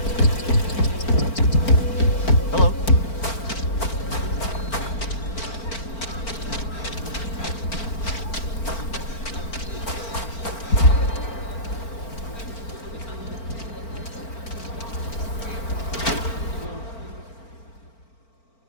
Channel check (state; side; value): late; right; 4.4 ms